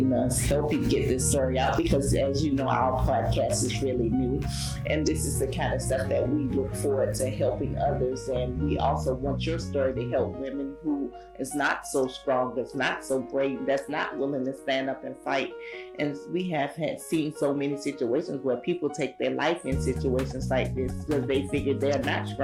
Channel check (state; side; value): identical; both; correlation 1.00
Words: us help you get this story out, because as you know, our podcast is really new, and this is the kind of stuff that we look forward to helping others. And we also want your story to help women who is not so strong, that's not so brave, that's not willing to stand up and fight. And we have seen so many situations where people take their life in situations like this because they figure they're not